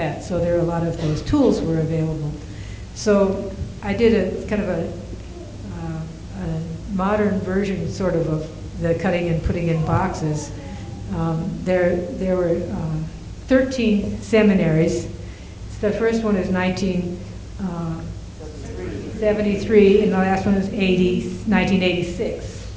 So there are a lot of those tools were available. So I did a kind of a modern version, sort of the cutting and putting in boxes. There were 13 seminaries. The first one is 1973, and the last one is 1986.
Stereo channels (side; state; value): both; identical; correlation 1.00